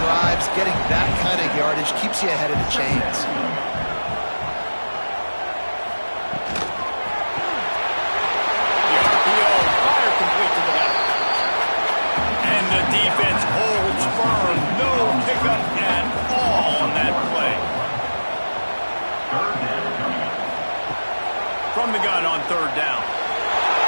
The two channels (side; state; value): both; inverted; correlation -1.00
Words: getting that kind of yardage keeps you ahead of the chains. The RPO, fire complete to the left. And the defense holds firm. No pickup at all on that play. From the gun on third down.